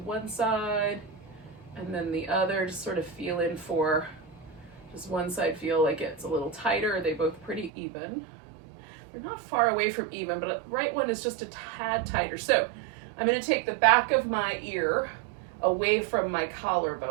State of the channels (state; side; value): drops out; left; at 7.7 s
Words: side, and then the other, just sort of feeling for, does one side feel like it's a little tighter? Are they both pretty even? They're not far away from even, but the right one is just a tad tighter. So I'm going to take the back of my ear away from my